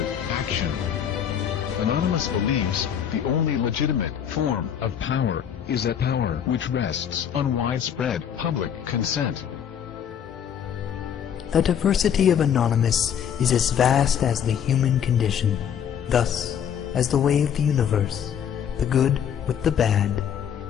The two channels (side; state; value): right; quieter; 8.6 dB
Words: action. Anonymous believes the only legitimate form of power is a power which rests on widespread public consent. The diversity of Anonymous is as vast as the human condition, thus, as the way of the universe, the good with the bad,